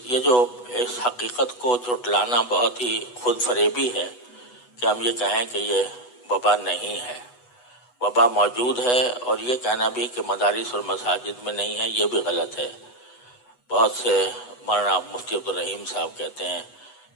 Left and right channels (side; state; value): right; late; 8.1 ms